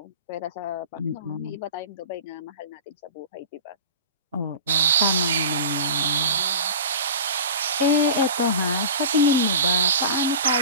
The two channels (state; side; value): inverted; both; correlation -0.35